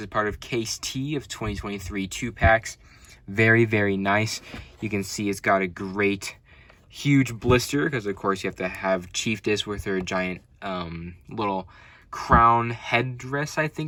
part of case T of 2023 2-packs. Very, very nice. You can see it's got a great, huge blister, because of course you have to have Chieftess with her giant little crown headdress, I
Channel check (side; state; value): both; identical; correlation 1.00